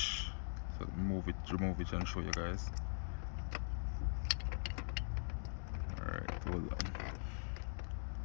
So remove it, and show you guys. Alright, hold on.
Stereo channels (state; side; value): silent; right; digital silence